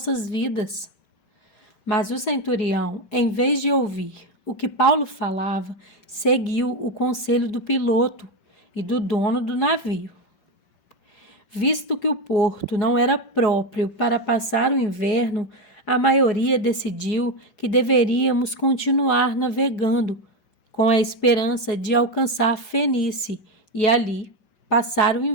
vidas. Mas o centurião, em vez de ouvir o que Paulo falava, seguiu o conselho do piloto e do dono do navio. Visto que o porto não era próprio para passar o inverno, a maioria decidiu que deveríamos continuar navegando, com a esperança de alcançar Fenície e ali passar o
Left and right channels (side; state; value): right; late; 5.2 ms